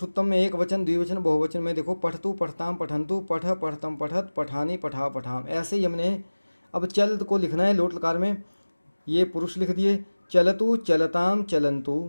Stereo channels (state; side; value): inverted; both; correlation -1.00